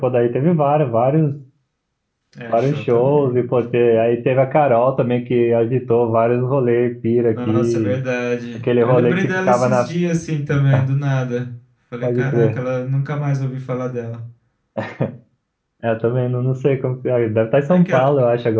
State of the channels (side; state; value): both; identical; correlation 1.00